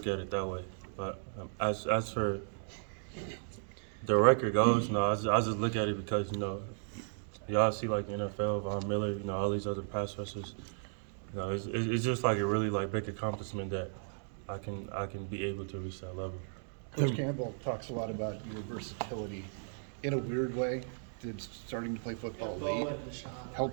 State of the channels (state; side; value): silent; left; digital silence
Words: at it that way. But as for the record goes, no, I just look at it because you know y'all see like the NFL, Von Miller, you know, all these other pass rushers. You know, it's just like a really like big accomplishment that I can be able to reach that level. Coach Campbell talks a lot about your versatility. In a weird way, did starting to play football late